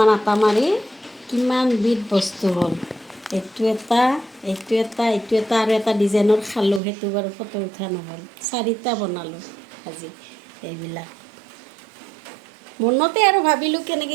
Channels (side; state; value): left; drops out; at 6.8 s